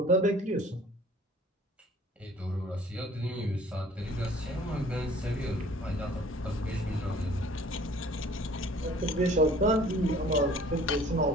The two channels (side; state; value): both; normal; correlation 0.52